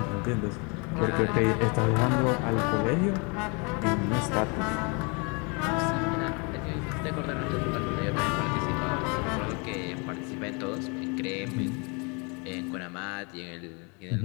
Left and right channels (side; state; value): right; quieter; 32.1 dB